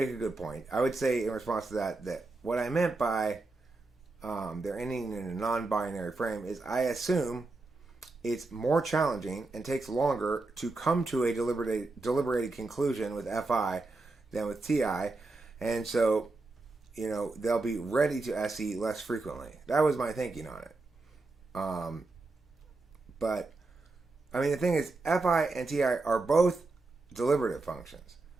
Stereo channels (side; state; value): left; quieter; 3.4 dB